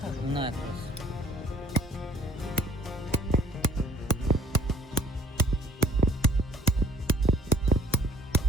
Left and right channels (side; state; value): both; normal; correlation 0.55